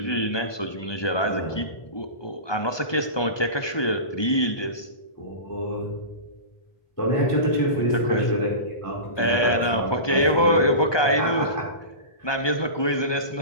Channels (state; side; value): late; right; 1.2 ms